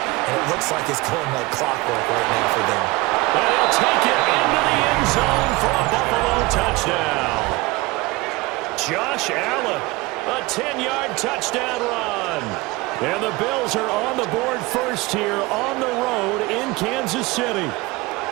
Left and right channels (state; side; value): quieter; left; 22.0 dB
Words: it looks like it's going like clockwork right now for them. And he'll take it into the end zone for a Buffalo touchdown. Josh Allen, a 10-yard touchdown run. And the Bills are on the board first here on the road in Kansas City.